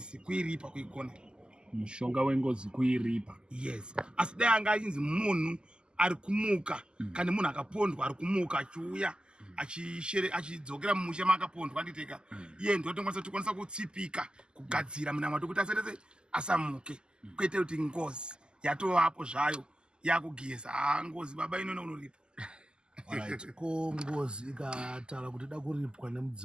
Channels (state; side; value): late; left; 0.047 ms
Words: kuiripa kuigona mushonga wengozi kuiripa. Yes, asi dai anga achinzi munhu ari kumuka kana munhu akapondwa ari kumuka achiuya achidzokera mumusha maakapondwa anditeka iye ndotokwanisa kutsipika kugadzira munamato kuti asatese asamuke kwete kuti ngozi yatovapo zvayo yakugeza ngozi baba inono unoripa. Alright, ko ngozi ikataura kuti da kuripwa